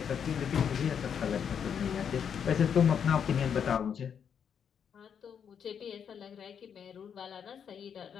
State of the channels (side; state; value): right; quieter; 7.7 dB